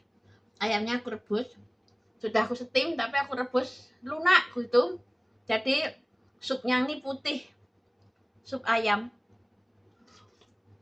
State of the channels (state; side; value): identical; both; correlation 1.00